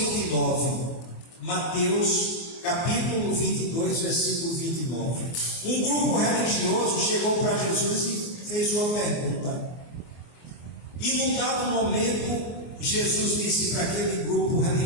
Mateus capítulo 22, versículo 29. Um grupo religioso chegou para Jesus e fez uma pergunta. E num dado momento, Jesus disse para aquele grupo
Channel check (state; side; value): late; right; 24 ms